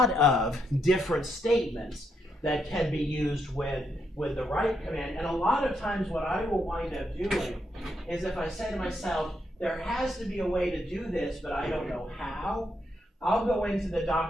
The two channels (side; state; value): both; normal; correlation 0.79